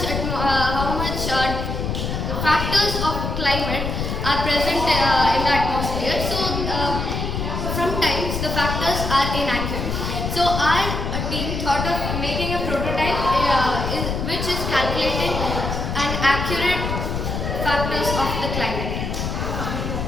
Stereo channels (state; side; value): noise; left; rumble, 3 dB below the sound